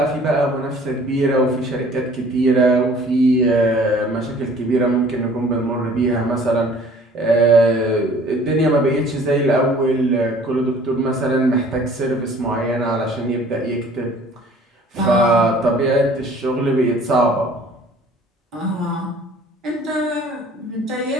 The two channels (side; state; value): both; normal; correlation 0.52